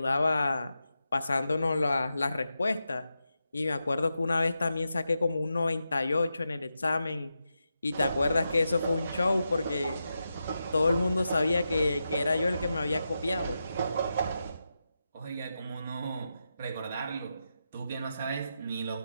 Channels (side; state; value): both; inverted; correlation -0.88